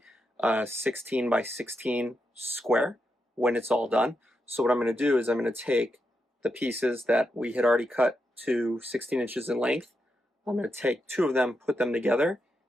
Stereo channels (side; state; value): both; normal; correlation 0.84